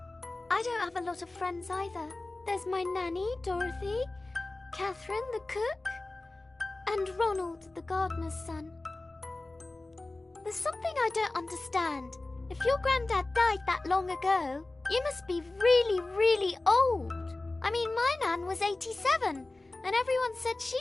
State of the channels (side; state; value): right; quieter; 3.0 dB